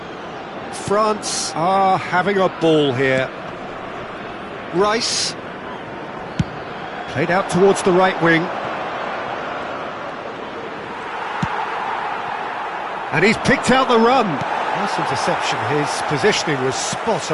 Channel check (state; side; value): identical; both; correlation 1.00